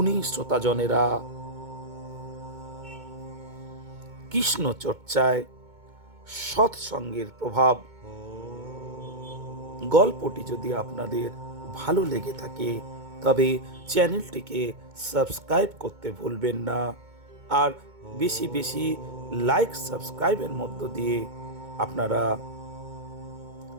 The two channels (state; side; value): late; left; 2.2 ms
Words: শ্রোতাজনেরা, কৃষ্ণ চর্চায় সৎসঙ্গের প্রভাব গল্পটি যদি আপনাদের ভালো লেগে থাকে তবে চ্যানেলটিকে সাবস্ক্রাইব করতে ভুলবেন না। আর বেশি বেশি লাইক সাবস্ক্রাইবের মধ্য দিয়ে আপনারা